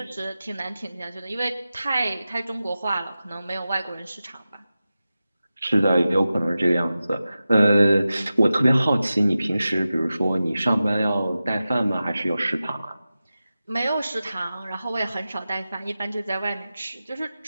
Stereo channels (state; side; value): inverted; both; correlation -0.94